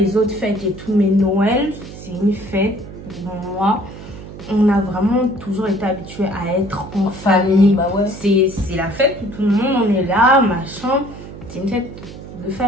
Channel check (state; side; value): noise; right; hum, 14 dB below the sound